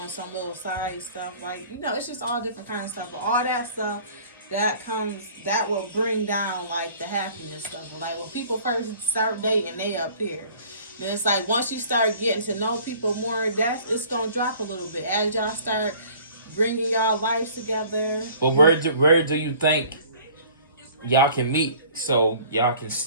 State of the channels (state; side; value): inverted; both; correlation -0.51